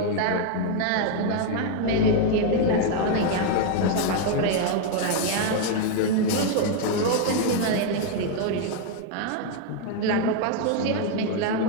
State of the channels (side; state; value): both; different; correlation 0.00